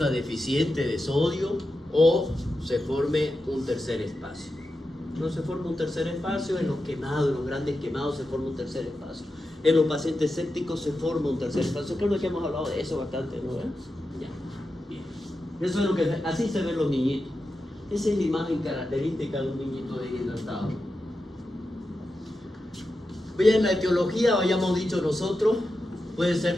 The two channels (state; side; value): normal; both; correlation 0.90